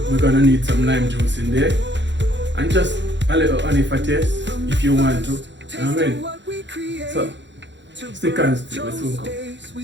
gonna need some lime juice in there, and just a little honey for taste if you want to. You know what I mean? So stick and stay, we soon come.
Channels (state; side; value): late; left; 0.52 ms